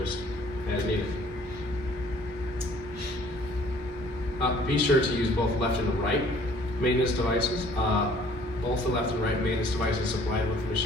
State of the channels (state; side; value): normal; both; correlation 0.56